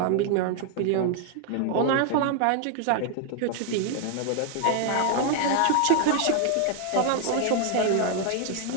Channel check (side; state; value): both; different; correlation 0.00